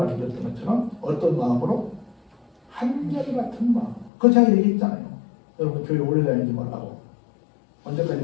것처럼 어떤 마음으로? 한결같은 마음. 그거 제가 얘기했잖아요. 여러분 교회 오래 다니지 말라고.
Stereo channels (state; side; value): drops out; right; at 4.1 s